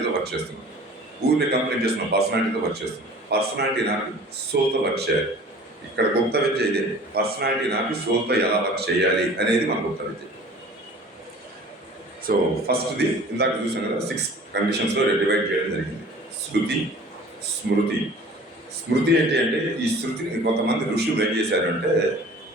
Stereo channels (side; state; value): both; normal; correlation 0.46